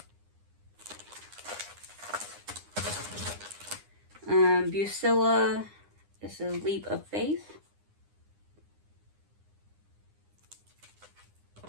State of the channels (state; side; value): late; left; 9.8 ms